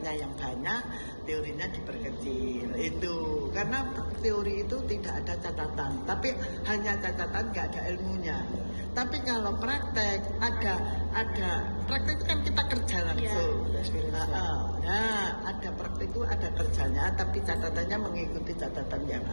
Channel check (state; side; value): inverted; both; correlation -1.00